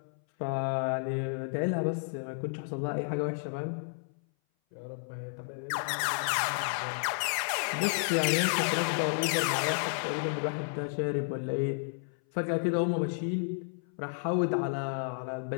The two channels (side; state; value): right; silent; 57 dB below the other